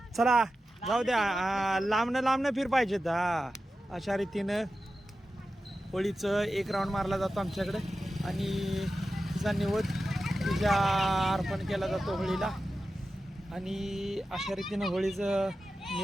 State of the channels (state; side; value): normal; both; correlation 0.92